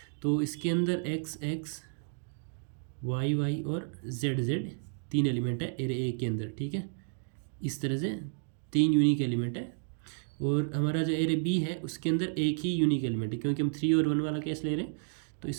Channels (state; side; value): silent; left; digital silence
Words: तो इसके अंदर एक्स एक्स वाई वाई और जेड जेड तीन एलिमेंट है एरे ए के अंदर। ठीक है, इस तरह से तीन यूनिक एलिमेंट है, और हमारा जो एरे बी है उसके अंदर एक ही यूनिक एलिमेंट है क्योंकि हम 3 और 1 वाला केस ले रहे हैं। तो